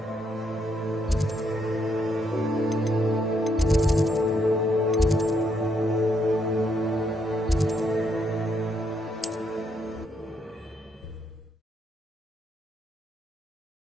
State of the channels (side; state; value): both; normal; correlation 0.75